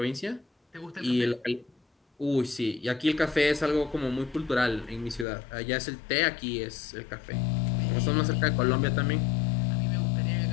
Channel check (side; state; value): right; drops out; at 5.2 s